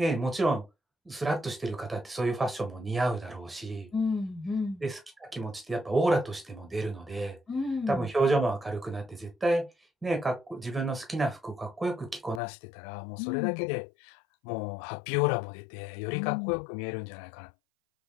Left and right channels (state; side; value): drops out; right; at 12.4 s